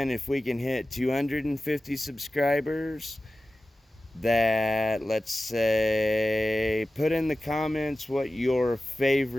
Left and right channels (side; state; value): both; normal; correlation 0.95